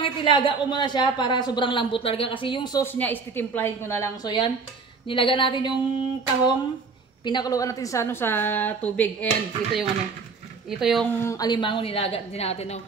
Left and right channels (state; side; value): quieter; left; 4.6 dB